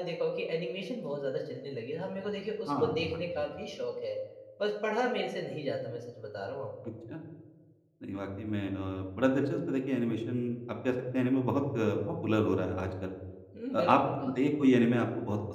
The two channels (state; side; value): identical; both; correlation 1.00